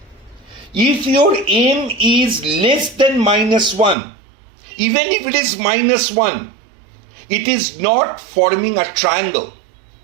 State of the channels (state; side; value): drops out; left; at 4.0 s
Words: If your M is less than -1, even if it is -1, it is not forming a triangle.